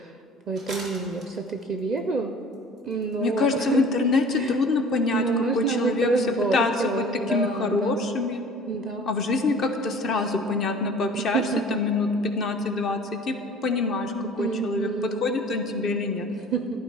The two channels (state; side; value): normal; both; correlation 0.46